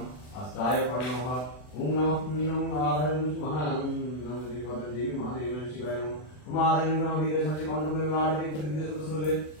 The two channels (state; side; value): late; right; 40 ms